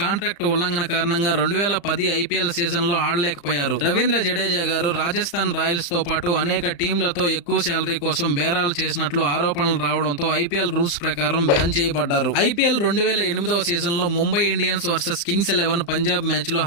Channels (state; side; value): late; right; 35 ms